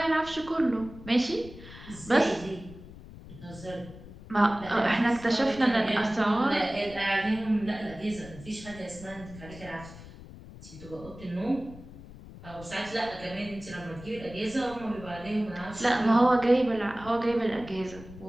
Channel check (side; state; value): left; noise; rumble, 16 dB below the sound